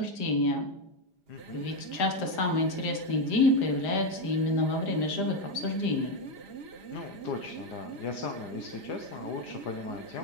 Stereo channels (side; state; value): right; late; 5.0 ms